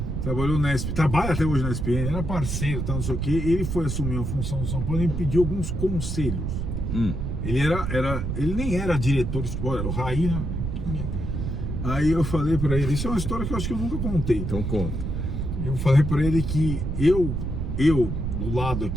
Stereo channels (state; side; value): noise; right; rumble, 2 dB below the sound